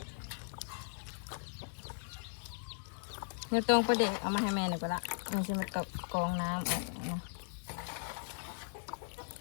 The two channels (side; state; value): right; silent; digital silence